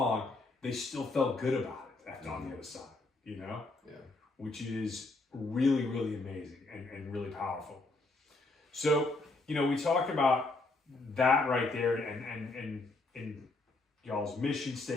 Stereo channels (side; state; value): right; quieter; 3.3 dB